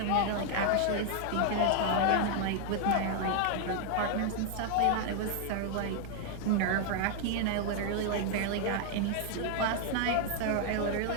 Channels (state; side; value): different; both; correlation 0.00